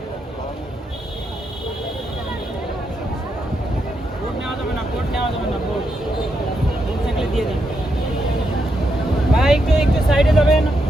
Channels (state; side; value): normal; both; correlation 0.82